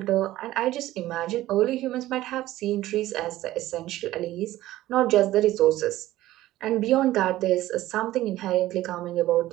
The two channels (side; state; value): left; quieter; 15.4 dB